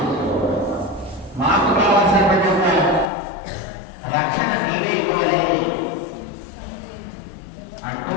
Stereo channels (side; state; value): right; drops out; at 3.1 s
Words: మాకు కావాల్సినటువంటి ఒక రక్షణ నీవే ఇవ్వలే అంటూ